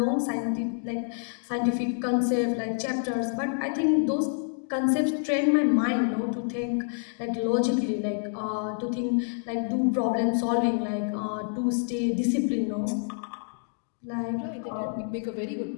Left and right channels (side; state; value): right; silent; digital silence